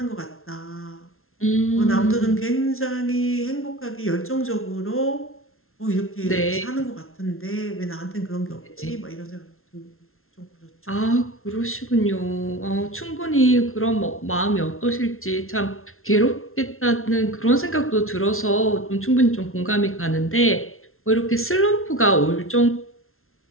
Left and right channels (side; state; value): right; late; 0.62 ms